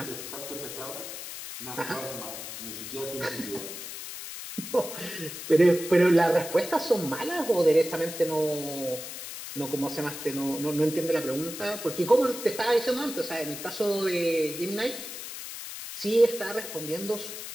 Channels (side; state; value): left; noise; hiss, 9 dB below the sound